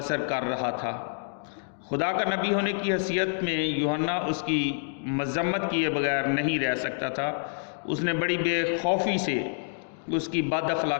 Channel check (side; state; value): right; silent; digital silence